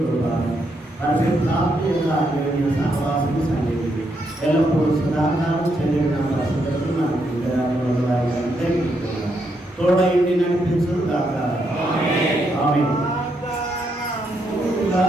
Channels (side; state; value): both; normal; correlation 0.78